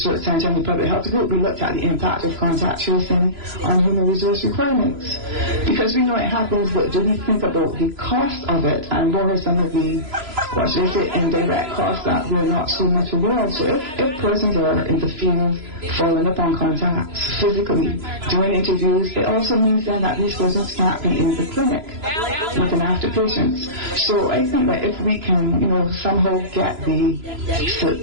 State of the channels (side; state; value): left; late; 3.0 ms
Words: Center and the Public Health Group, we looked at the impact of contact tracing on human resource requirements. Because we know it happens, but do we think about the cost of it and what are some of the, indirect costs that we're not so much aware of? So if persons are in the field following up on contacts physically, doing interviews, it also means then that these persons can't be in the clinic looking after patients. So I think that if we can, somehow get